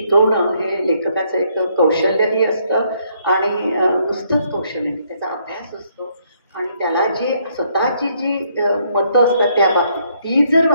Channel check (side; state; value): both; inverted; correlation -0.70